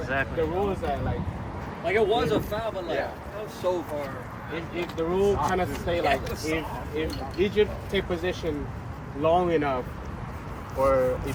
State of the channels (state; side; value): identical; both; correlation 1.00